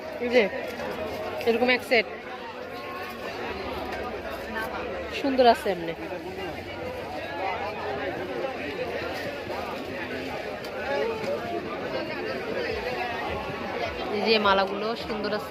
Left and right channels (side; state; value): both; identical; correlation 1.00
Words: এই যে এরকম এক সেট, সুন্দর আছে এমনি। এই যে মালাগুলো সুন্দর